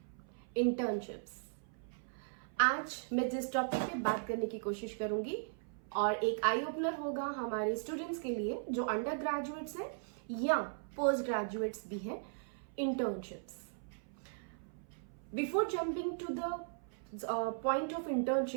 Internships. आज मैं जिस topic पे बात करने की कोशिश करूंगी और एक आई ओपनर होगा हमारे स्टूडेंट्स के लिए जो अंडर ग्रेजुएट्स हैं या पोस्ट ग्रेजुएट्स भी हैं, internships. Before jumping to the point of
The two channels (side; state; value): left; silent; 53 dB below the other